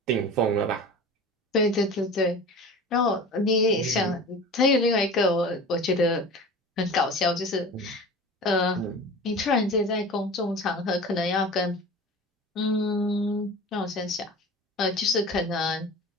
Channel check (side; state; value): both; normal; correlation 0.36